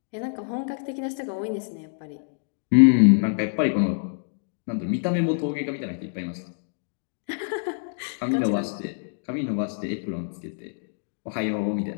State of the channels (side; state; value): right; silent; digital silence